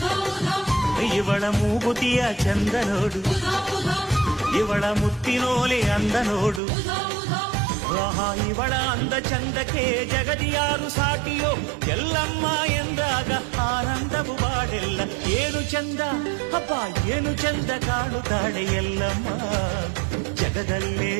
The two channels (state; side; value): drops out; left; at 6.6 s